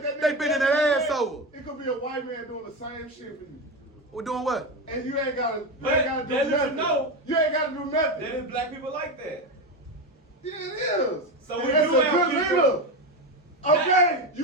they bending their ass over. It could be a white man doing the same shit for you. We're doing what? And you ain't gotta But do that nothing. know. You ain't gotta do nothing. There is black people like that. Yeah, it is. So And we that's do a have good people- leader. Okay,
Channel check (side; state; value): both; normal; correlation 0.16